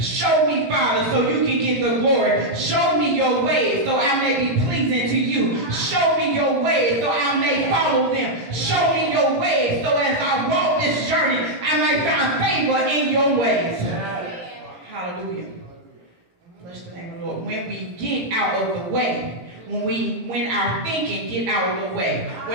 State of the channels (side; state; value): left; late; 18 ms